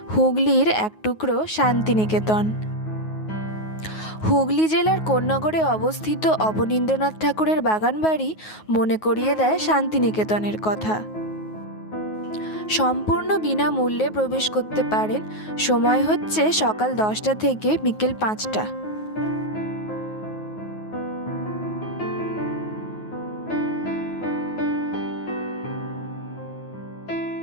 হুগলির এক টুকরো শান্তিনিকেতন। হুগলি জেলার কোন্নগরে অবস্থিত অবনীন্দ্রনাথ ঠাকুরের বাগানবাড়ি মনে করিয়ে দেয় শান্তিনিকেতনের কথা। সম্পূর্ণ বিনামূল্যে প্রবেশ করতে পারেন। সময় হচ্ছে সকাল 10টা থেকে বিকেল 5টা।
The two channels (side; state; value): right; late; 9.4 ms